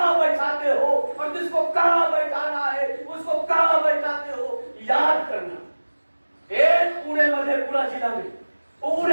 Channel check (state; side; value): inverted; both; correlation -1.00